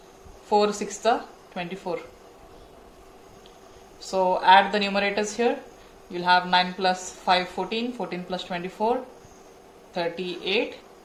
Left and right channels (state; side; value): identical; both; correlation 1.00